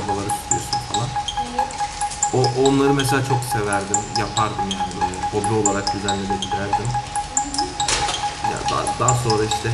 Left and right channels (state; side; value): identical; both; correlation 1.00